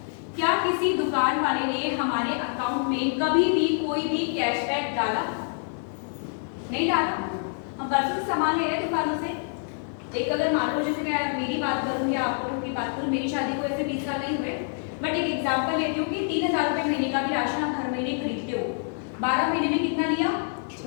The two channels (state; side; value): silent; right; 61 dB below the other